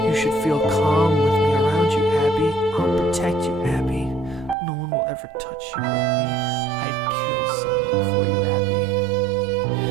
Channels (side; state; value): left; drops out; at 4.5 s